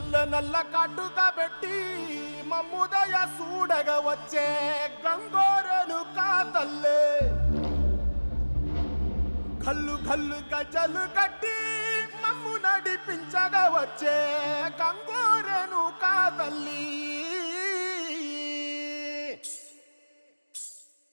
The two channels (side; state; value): both; inverted; correlation -1.00